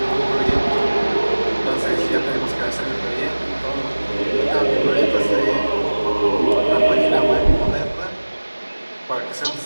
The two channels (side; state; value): both; inverted; correlation -1.00